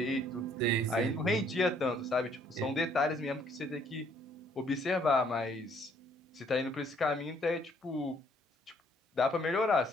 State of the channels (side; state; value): both; normal; correlation 0.64